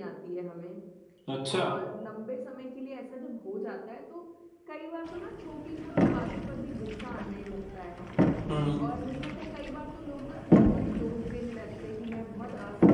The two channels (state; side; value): identical; both; correlation 1.00